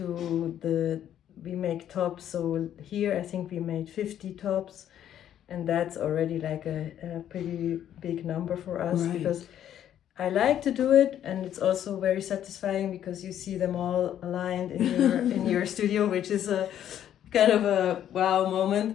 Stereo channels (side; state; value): right; quieter; 10.6 dB